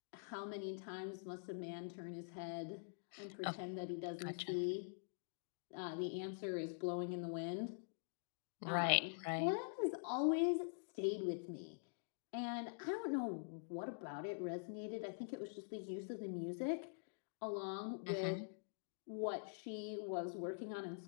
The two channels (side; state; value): right; silent; digital silence